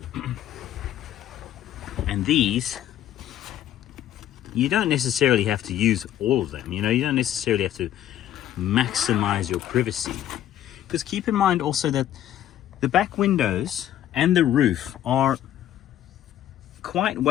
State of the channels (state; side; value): quieter; right; 11.8 dB